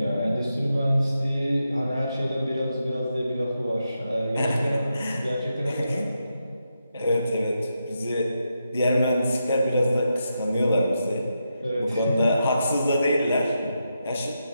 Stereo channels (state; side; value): inverted; both; correlation -0.86